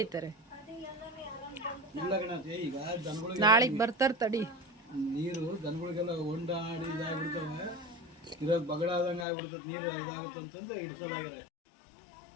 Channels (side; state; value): right; drops out; at 9.2 s